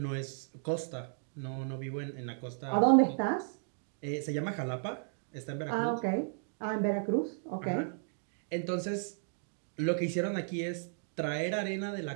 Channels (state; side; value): silent; left; digital silence